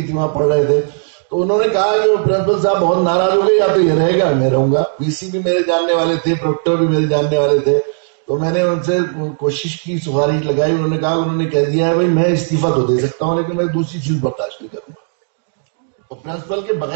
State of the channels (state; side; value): silent; left; digital silence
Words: تھی، وہاں پڑھ رہے تھے. تو انہوں نے کہا کہ پرنسپل صاحب بہت ناراض ہو گئے، یا تو یہ رہے گا میں رہوں گا. پی سی بھی میرے جاننے والے تھے، پروکٹر بھی میرے جاننے والے تھے. تو میں نے ان سے کوشش کی، سفارش لگائی، انہوں نے کہا، انہوں نے کہہ دیا ہے بھائی میں استعفیٰ تو دے سکتا ہوں لیکن میں دوسری چیز برداشت نہیں کروں گا. تو پرنسپل کے